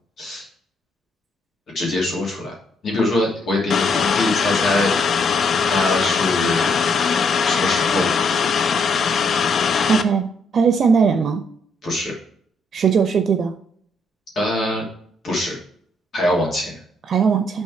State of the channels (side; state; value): both; normal; correlation 0.71